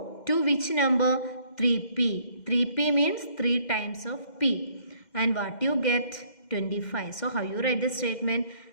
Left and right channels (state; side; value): late; right; 2.1 ms